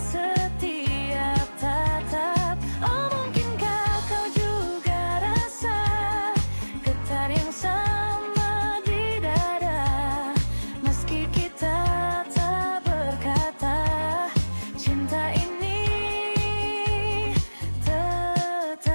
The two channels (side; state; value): both; inverted; correlation -1.00